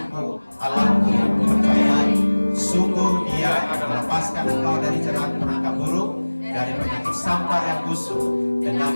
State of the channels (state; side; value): inverted; both; correlation -1.00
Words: Allahku yang kupercayai. Sungguh Dia akan melepaskan engkau dari jerat penangkap burung, dari penyakit sampar yang busuk. Dengan